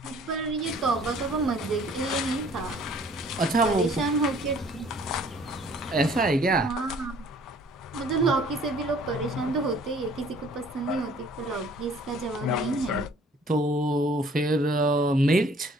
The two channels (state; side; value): normal; both; correlation 0.55